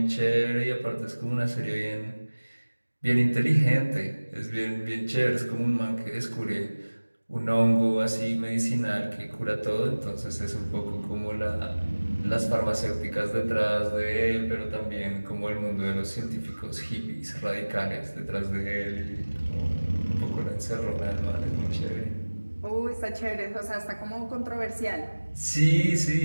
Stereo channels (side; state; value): both; inverted; correlation -1.00